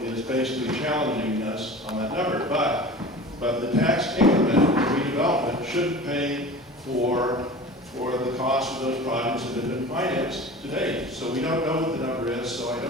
is basically challenging us on that number. But the tax increment redevelopment should pay for the cost of those projects that have been financed to date. So we don't know what the number is, so I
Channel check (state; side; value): normal; both; correlation 0.37